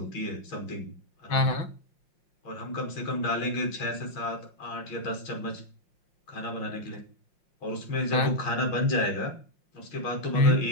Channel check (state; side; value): late; right; 5.6 ms